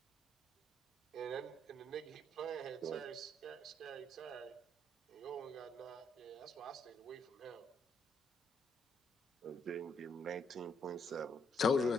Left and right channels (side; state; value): both; normal; correlation 0.73